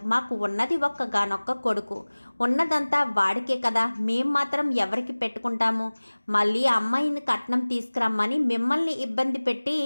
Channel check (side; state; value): both; inverted; correlation -1.00